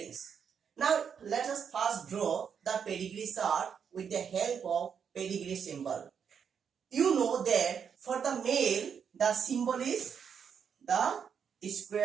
Now let us first draw the pedigree chart with the help of pedigree symbol. You know that for the male the symbol is the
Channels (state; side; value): quieter; left; 7.2 dB